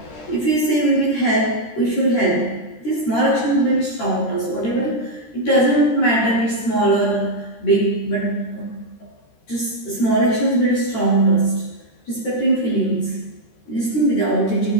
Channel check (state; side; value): late; right; 13 ms